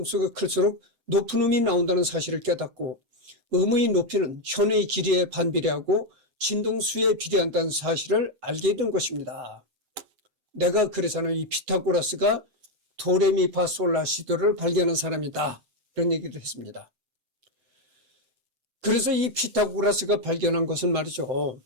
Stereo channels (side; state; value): left; late; 7.7 ms